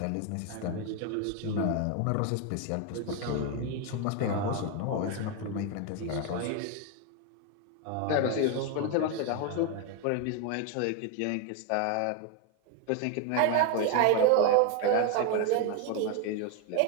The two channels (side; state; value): both; different; correlation 0.01